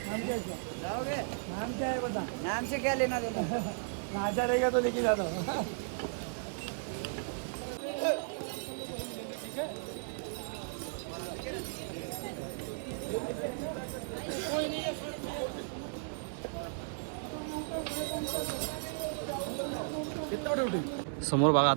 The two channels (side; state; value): left; silent; 54 dB below the other